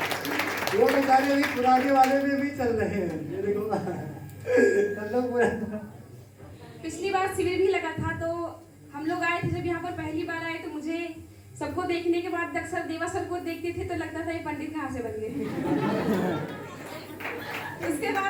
वो बेचारे अभी पुराने वाले में भी चल रहे हैं। ये देखो सब लोग पूरा। पिछली बार शिविर भी लगा था तो हम लोग आए थे, जब यहाँ पर पहली बार आए तो मुझे सबको देखने के बाद अक्सर देवा सर को देखते थे तो लगता था ये पंडित कहाँ से बन गए। उसके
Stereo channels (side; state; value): both; identical; correlation 1.00